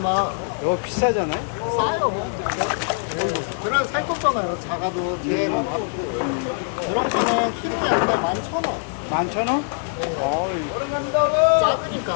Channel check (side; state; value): right; silent; 64 dB below the other